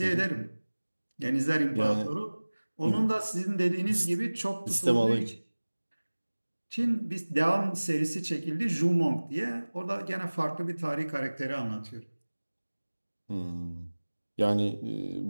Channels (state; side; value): inverted; both; correlation -1.00